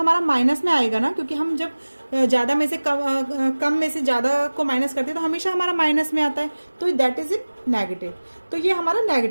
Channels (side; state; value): both; inverted; correlation -1.00